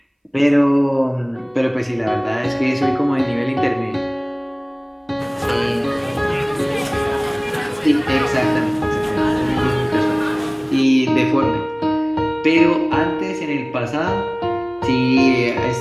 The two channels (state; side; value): identical; both; correlation 1.00